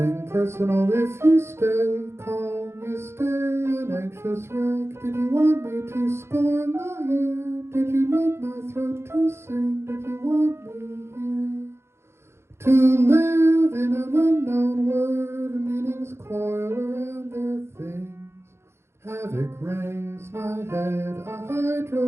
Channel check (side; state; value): left; late; 0.12 ms